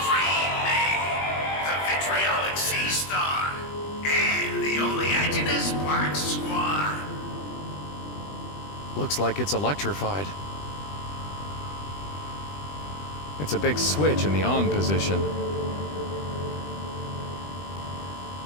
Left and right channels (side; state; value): right; late; 20 ms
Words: maid, the vitriolic sea star, and the oleaginous black swan. Looks like it's electrified. It's a big switch in the on position.